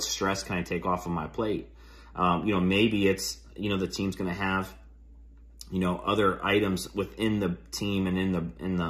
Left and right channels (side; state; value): both; identical; correlation 1.00